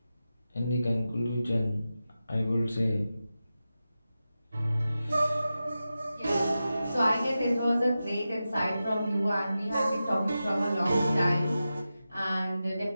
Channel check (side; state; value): both; inverted; correlation -0.92